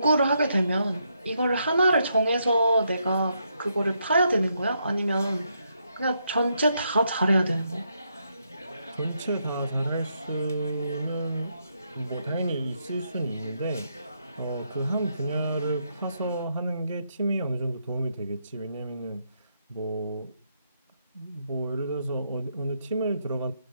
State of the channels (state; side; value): inverted; both; correlation -0.78